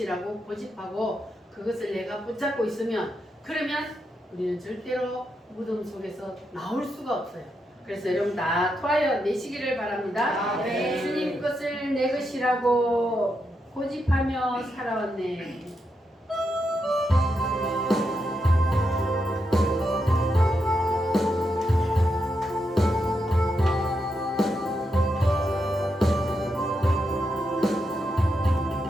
고집하고 그것을 내가 붙잡고 있으면, 그러면 우리는 절대로 무덤 속에서 나올 수가 없어요. 그래서 여러분 다 토하여 내시기를 바랍니다. 아멘. 주님 것을 내 것이라고 고집하며 살아왔네.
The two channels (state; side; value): normal; both; correlation 0.84